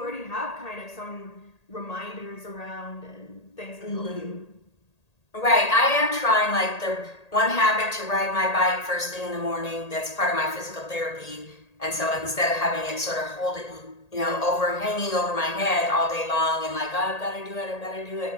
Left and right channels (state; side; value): late; right; 1.8 ms